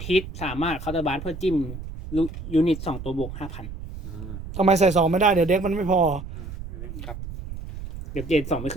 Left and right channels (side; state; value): right; noise; rumble, 10 dB below the sound